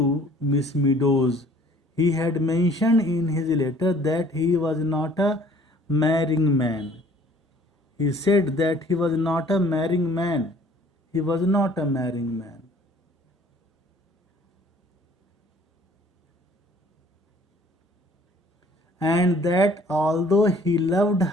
Miss Meadows. He had mentioned in his letter that he was not a marrying man. He said that he was not a marrying man. He was not a marrying man. And that although he loved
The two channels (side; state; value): both; normal; correlation 0.55